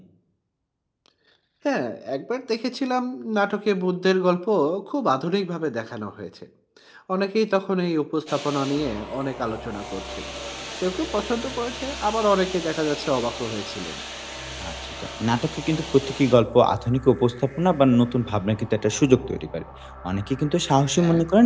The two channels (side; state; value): both; identical; correlation 1.00